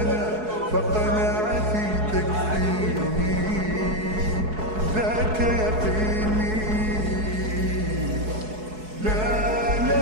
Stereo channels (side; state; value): left; late; 4.7 ms